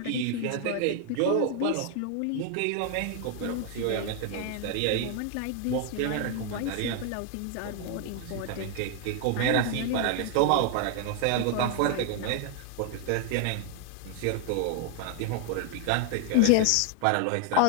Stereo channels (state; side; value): different; both; correlation 0.00